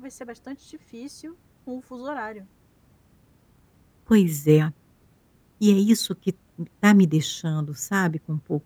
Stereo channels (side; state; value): both; identical; correlation 1.00